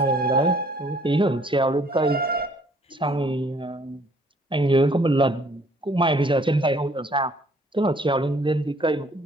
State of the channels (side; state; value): both; normal; correlation 0.60